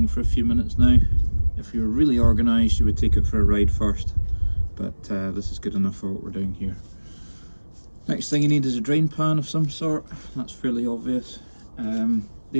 for a few minutes now. If you were really organised, you would take it for a ride first, but this is good enough for what we're doing here. Next thing you need is a drain pan of some sort. That's fairly obvious.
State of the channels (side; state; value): both; inverted; correlation -1.00